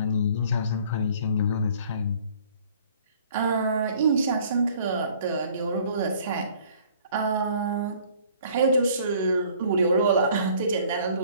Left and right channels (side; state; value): both; inverted; correlation -0.55